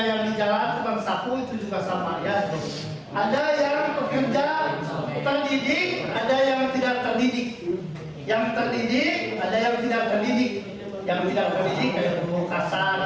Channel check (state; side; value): identical; both; correlation 1.00